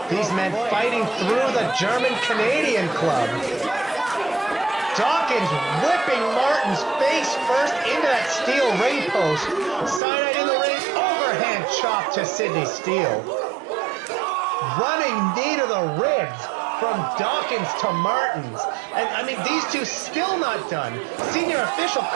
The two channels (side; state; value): left; drops out; at 10.0 s